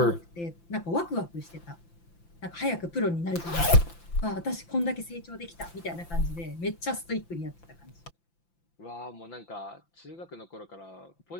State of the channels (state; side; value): late; right; 5.9 ms